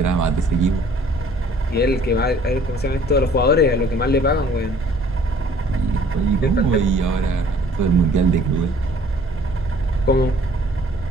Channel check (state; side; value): normal; both; correlation 0.56